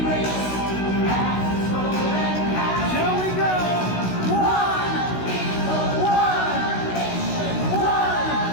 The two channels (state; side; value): late; right; 16 ms